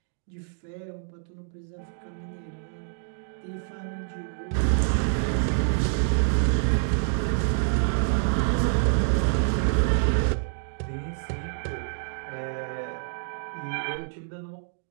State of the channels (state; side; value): silent; left; digital silence